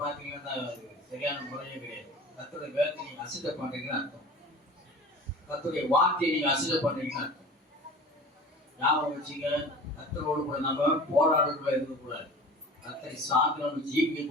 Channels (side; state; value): both; normal; correlation 0.40